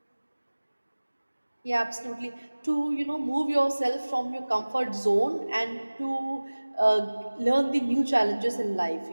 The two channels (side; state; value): both; inverted; correlation -1.00